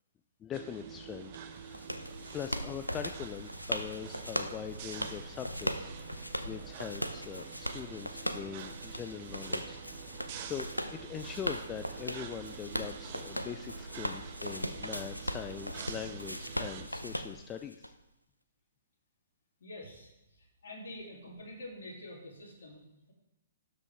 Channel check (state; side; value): inverted; both; correlation -0.50